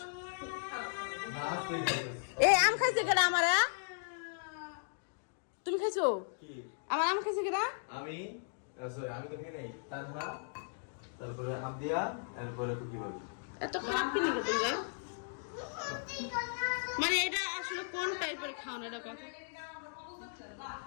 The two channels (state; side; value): silent; right; digital silence